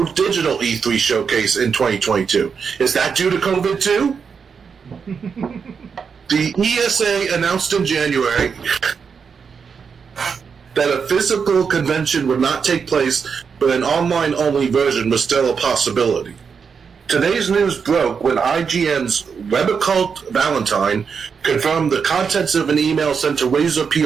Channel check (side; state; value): left; quieter; 6.1 dB